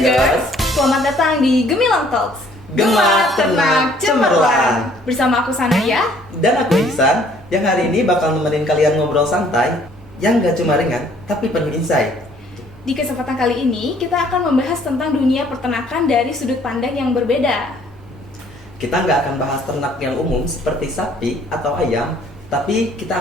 selamat datang di Gemilang Talks. Gema, Ternak, Cemerlang. Bersama aku Sanaya. Dan aku Ihsan, yang hari ini bakal nemenin kalian ngobrol santai yang gak cuma ringan, tapi penuh insight. Di kesempatan kali ini, kita akan membahas tentang dunia peternakan dari sudut pandang yang berbeda. Kita nggak akan bahas ternak yang umum seperti sapi atau ayam, tapi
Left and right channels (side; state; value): both; normal; correlation 0.60